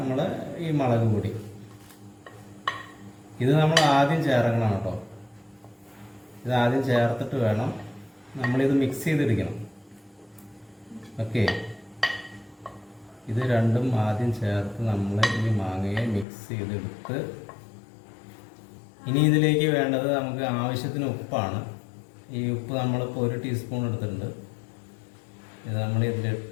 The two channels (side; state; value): right; drops out; at 16.2 s